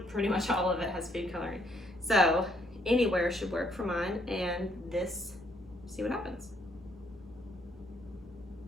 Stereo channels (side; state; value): both; normal; correlation 0.70